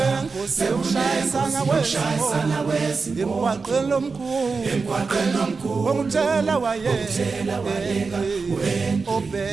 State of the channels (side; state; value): left; quieter; 4.6 dB